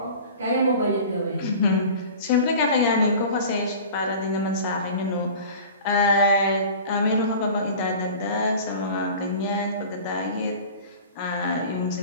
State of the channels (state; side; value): inverted; both; correlation -0.39